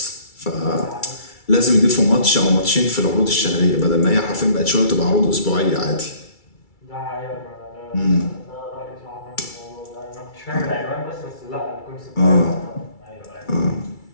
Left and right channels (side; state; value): right; late; 2.3 ms